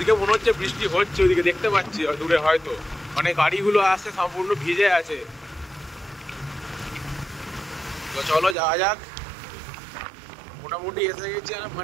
মনে হচ্ছে বৃষ্টি হচ্ছে, ওদিকে দেখতে পাচ্ছি দূরে হয়তো মানে গাড়িগুলো আসছে সম্পূর্ণ ভিজে আছে। তো চলো যাওয়া যাক। মোটামুটি এসে গেছি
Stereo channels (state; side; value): drops out; left; at 8.6 s